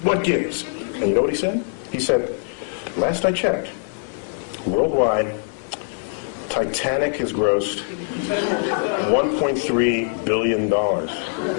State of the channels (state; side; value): silent; right; 64 dB below the other